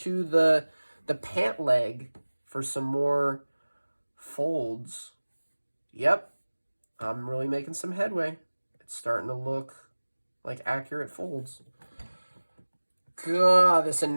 the pant leg for some more folds. Yep, I'm really making some headway. It's starting to look like accurate folds. God, this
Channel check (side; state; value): both; inverted; correlation -1.00